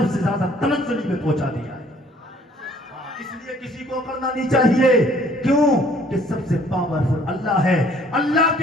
سے زیادہ تنزلی میں پہنچا دیا ہے. اس لیے کسی کو اکڑنا نہیں چاہیے. کیوں کہ سب سے پاورفل اللہ ہے. اللہ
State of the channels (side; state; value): both; normal; correlation 0.59